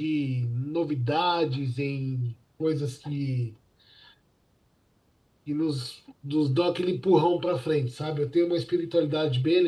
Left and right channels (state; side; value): identical; both; correlation 1.00